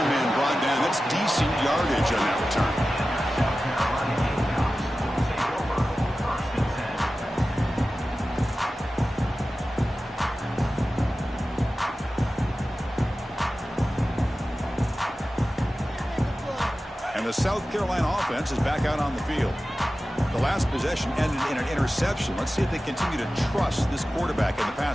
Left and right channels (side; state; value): both; normal; correlation 0.95